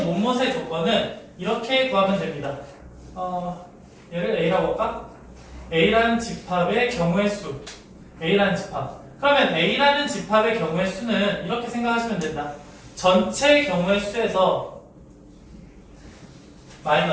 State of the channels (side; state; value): both; identical; correlation 1.00